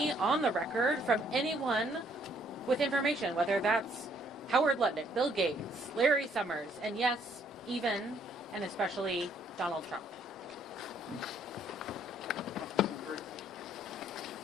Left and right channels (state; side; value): normal; both; correlation 0.66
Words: on the record from anyone with information, whether that's Howard Lutnick, Bill Gates, Larry Summers, and yes, even and especially Donald Trump.